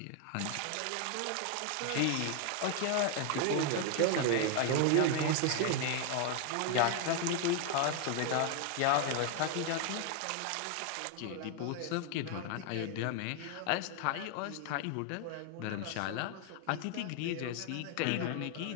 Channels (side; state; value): both; different; correlation 0.01